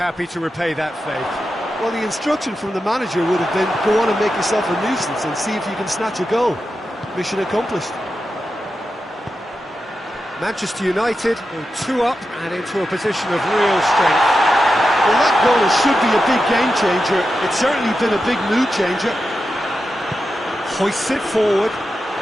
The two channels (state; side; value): normal; both; correlation 0.90